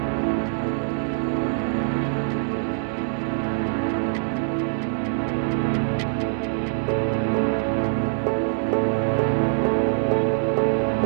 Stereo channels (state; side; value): silent; left; digital silence